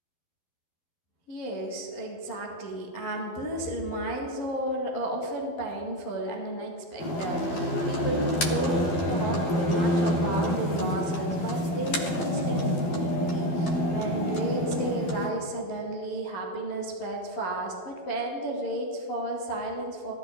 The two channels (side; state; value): right; late; 12 ms